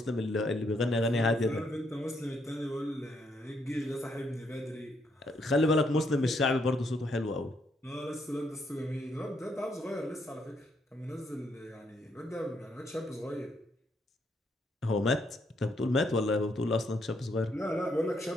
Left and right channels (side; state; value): both; normal; correlation 0.74